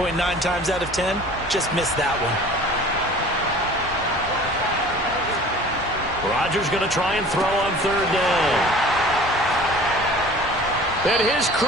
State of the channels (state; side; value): normal; both; correlation 0.45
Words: times out of 10? Just missed that one. Rodgers going to try and throw on third down. And his